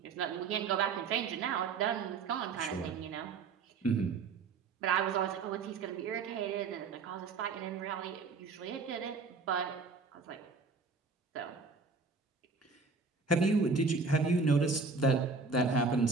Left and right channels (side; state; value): left; quieter; 4.5 dB